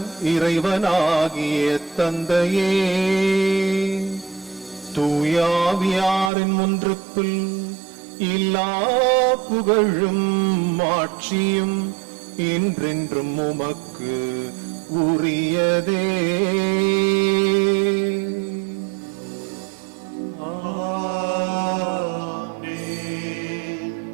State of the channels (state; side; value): drops out; left; at 6.3 s